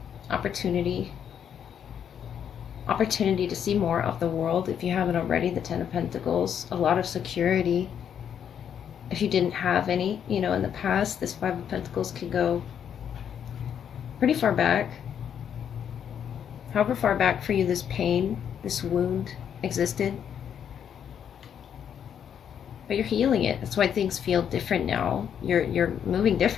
opportunity to see more of the world if you haven't already. The Ten of Pentacles, a lot of security. If you didn't have any, in the past, this Five of Pentacles could go pretty far back. However far back for you this pain, this wound existed. But you're healing it. That's why things feel different now. You're moving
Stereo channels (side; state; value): right; quieter; 8.6 dB